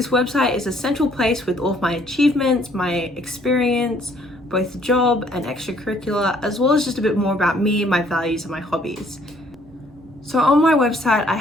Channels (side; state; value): both; normal; correlation 0.63